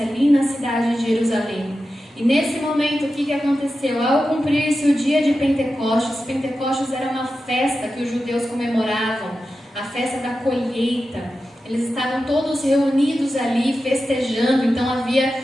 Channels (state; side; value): normal; both; correlation 0.92